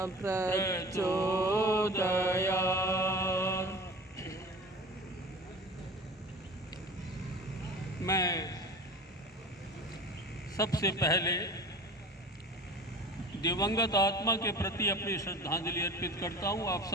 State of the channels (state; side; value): normal; both; correlation 0.38